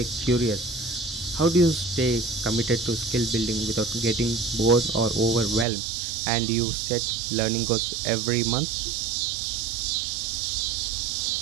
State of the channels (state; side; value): drops out; left; at 5.7 s